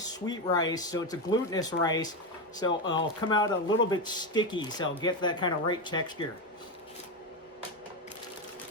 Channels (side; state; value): both; normal; correlation 0.13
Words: rice, so it's a glutinous rice, so it'll come out a little bit sticky, so I'll get that kind of right texture.